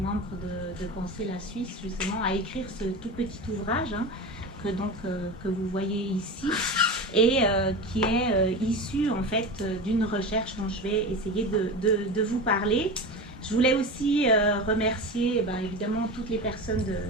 de Penser la Suisse justement à écrire ce tout petit ouvrage que vous voyez ici et qui est issu en fait d'une recherche dont je vais essayer de vous parler. Je voulais aussi remercier évidemment toutes les personnes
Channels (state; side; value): normal; both; correlation 0.27